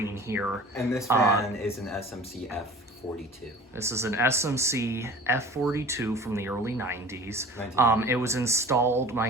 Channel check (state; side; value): normal; both; correlation 0.42